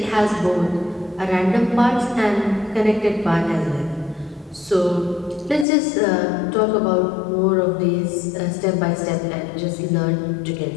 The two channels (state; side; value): drops out; right; at 5.7 s